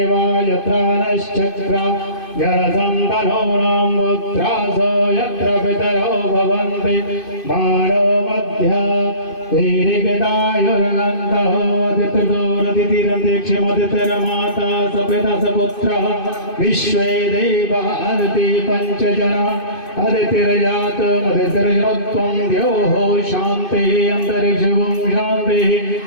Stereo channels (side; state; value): right; late; 2.5 ms